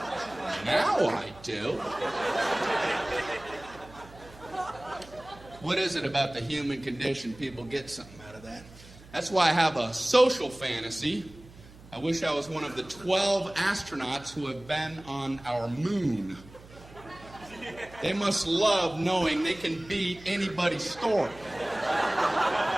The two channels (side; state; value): right; noise; hum, 21 dB below the sound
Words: Now I do. What is it about the human condition? People get something out of that. That's why I have a social fantasy. I wish I was one of the 12 astronauts who have been on our moon. They must love knowing they can beat anybody's story